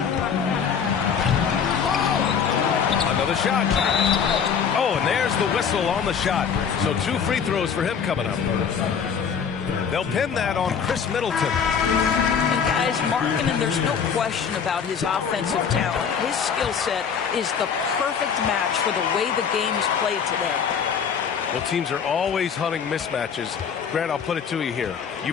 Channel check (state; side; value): quieter; right; 7.0 dB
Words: Another shot. Oh, and there's the whistle on the shot. So 2 free throws for him coming up. They'll pin that on Chris Middleton. And guys, Markkanen, there's no question about his offensive talent. His skill set is the perfect match for the way the game is played today. Well, teams are always hunting mismatches. Grant, I'll put it to you here. You